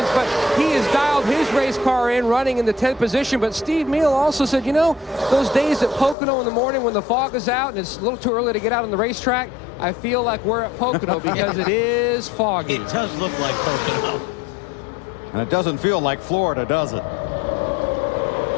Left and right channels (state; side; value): drops out; right; at 6.2 s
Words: but he has dialed his race car in, running in the 10th position. But Steve Meal also said, you know, those days at Pocono in the morning when the fog is out and it's a little too early to get out on the racetrack, I feel like we're at Pocono because it is foggy. It does look like Pocono. And it doesn't feel like Florida, does it?